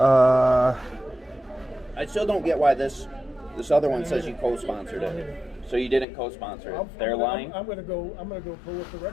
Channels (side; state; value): right; drops out; at 6.1 s